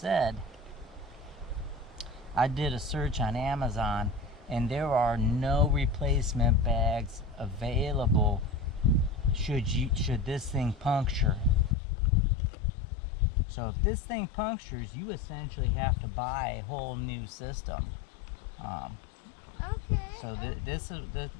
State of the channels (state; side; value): drops out; right; at 11.8 s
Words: I did a search on Amazon, and there are no replacement bags available should this thing puncture. So if this thing punctures, you essentially have to buy a whole new system. Okay. So this is the,